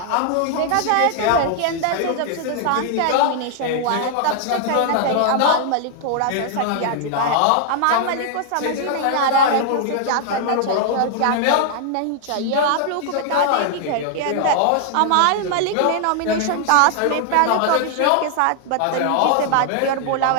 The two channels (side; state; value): both; different; correlation 0.00